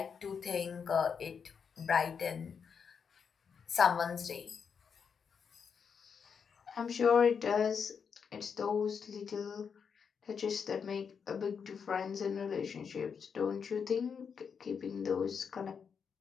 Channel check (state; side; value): quieter; right; 6.5 dB